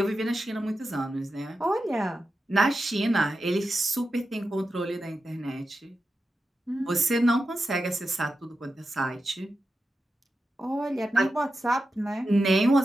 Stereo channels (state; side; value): normal; both; correlation 0.90